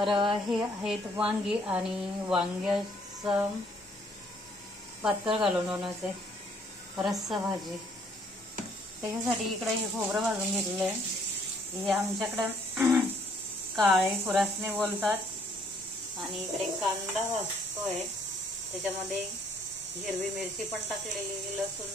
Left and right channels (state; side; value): normal; both; correlation 0.64